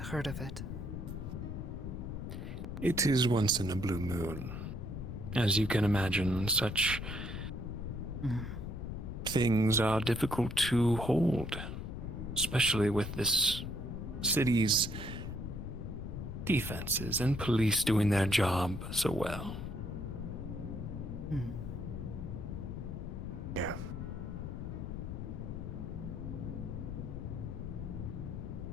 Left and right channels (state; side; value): noise; left; rumble, 6 dB below the sound